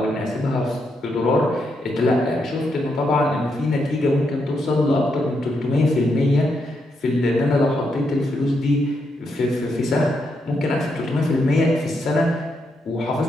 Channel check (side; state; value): both; normal; correlation 0.81